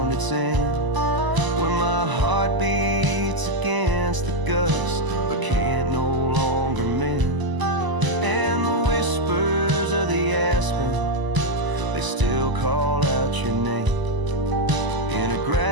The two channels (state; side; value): late; left; 1.0 ms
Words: its end, where my heart beats against the gust but can't no longer mend. And the whispers of the aspen, they still call out your name, in a